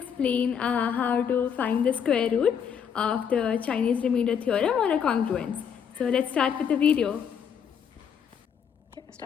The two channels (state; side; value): quieter; right; 7.6 dB